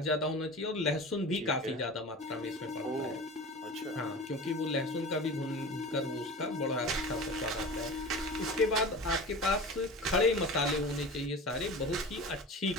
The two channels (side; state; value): both; normal; correlation 0.34